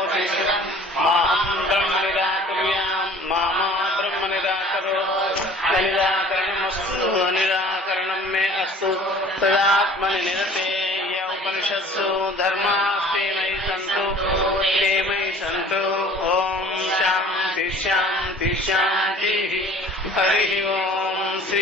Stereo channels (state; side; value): normal; both; correlation 0.49